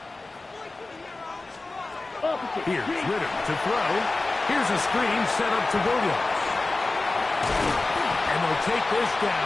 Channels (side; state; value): right; quieter; 3.3 dB